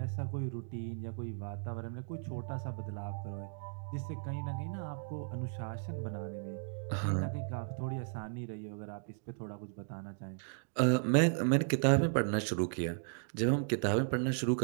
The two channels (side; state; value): left; silent; digital silence